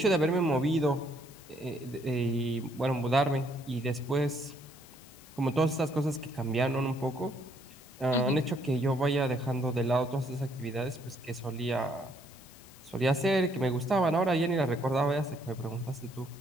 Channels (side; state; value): left; noise; hiss, 23 dB below the sound